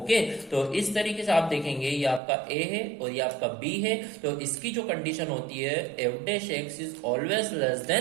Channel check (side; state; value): left; drops out; at 2.2 s